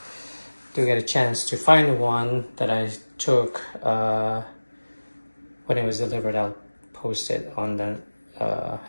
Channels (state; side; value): inverted; both; correlation -1.00